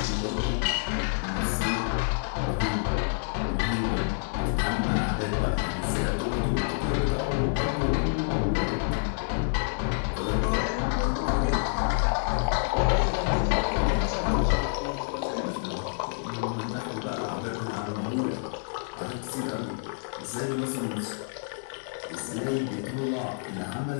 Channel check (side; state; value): right; silent; 59 dB below the other